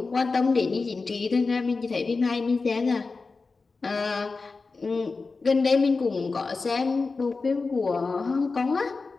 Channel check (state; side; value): quieter; right; 4.1 dB